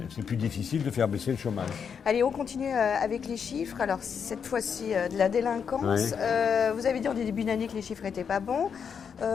plus difficile de faire baisser le chômage. Allez, on continue avec les chiffres. Alors, cette fois-ci, de la délinquance. Ouais. Vous avez dit en début d'année que les chiffres n'étaient pas bons.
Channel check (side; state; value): right; quieter; 6.9 dB